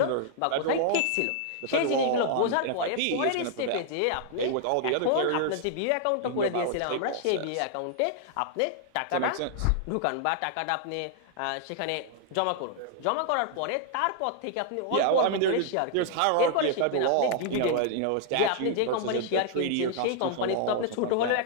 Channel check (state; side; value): different; both; correlation -0.01